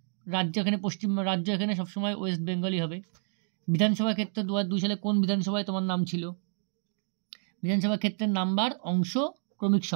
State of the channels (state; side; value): silent; left; 58 dB below the other